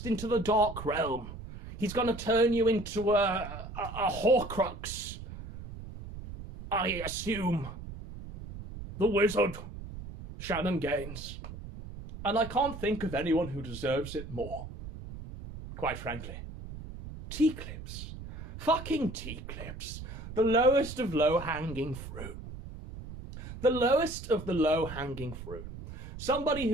into the dark realm. He's going to turn you into a Horcrux. I assume. The wizard, Shannon Gaines. And I can't think of anyone who deserves it more. Quite frankly. Teaclips. Fucking Teaclips. The lowest of low-hanging fruit. The lowest of the low-hanging fruit. Somebody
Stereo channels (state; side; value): noise; right; rumble, 11 dB below the sound